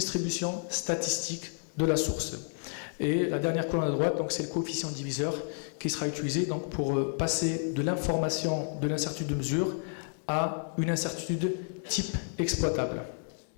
statistique de la source. Et la dernière colonne à droite, donc c'est le coefficient diviseur qui sera utilisé donc, pour passer de l'information de l'incertitude de mesure à une incertitude type exploitable.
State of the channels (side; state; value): right; silent; digital silence